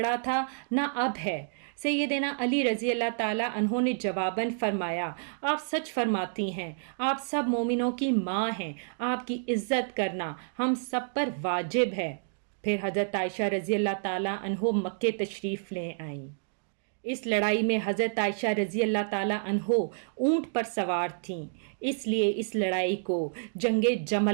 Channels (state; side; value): silent; left; digital silence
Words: تھا نہ اب ہے۔ سیدنا علی رضی اللہ تعالیٰ عنہ نے جواباً فرمایا، آپ سچ فرماتی ہیں، آپ سب مومنوں کی ماں ہیں، آپ کی عزت کرنا ہم سب پر واجب ہے۔ پھر حضرت عائشہ رضی اللہ تعالیٰ عنہ مکے تشریف لے آئیں۔ اس لڑائی میں حضرت عائشہ رضی اللہ تعالیٰ عنہ اونٹ پر سوار تھیں، اس لیے اس لڑائی کو جنگ